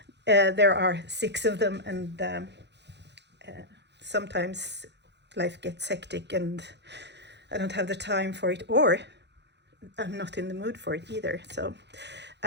there are 6 of them and sometimes life gets hectic and I don't have the time for it, or I'm not in the mood for it either. So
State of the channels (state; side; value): late; left; 0.50 ms